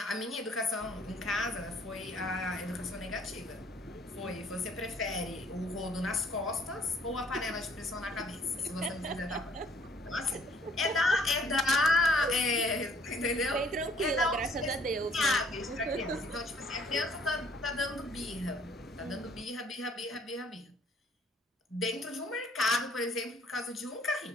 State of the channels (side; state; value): both; normal; correlation 0.60